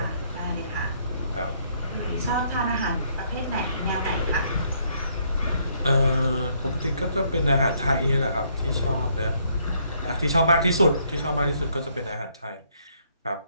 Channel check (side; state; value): both; inverted; correlation -0.69